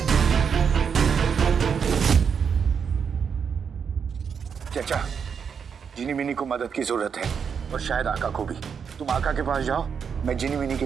चाचा, जिनी मिनी को मदद की जरूरत है और शायद आका को भी। तुम आका के पास जाओ, मैं जिनी मिनी के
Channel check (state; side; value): quieter; left; 6.7 dB